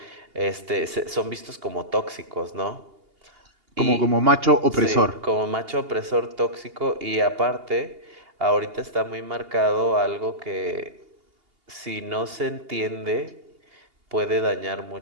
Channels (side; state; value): left; late; 2.8 ms